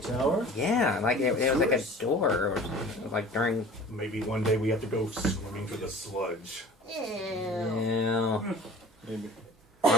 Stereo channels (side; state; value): both; normal; correlation 0.42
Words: The tower? Yeah, like it was like a door, or like during. Maybe one day we have to go swimming through the sludge. Ew. Yeah. Maybe.